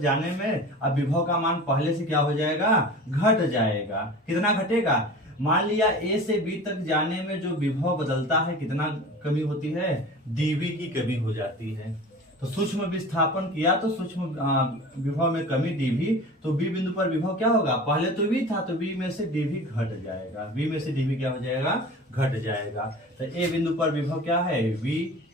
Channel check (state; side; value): normal; both; correlation 0.38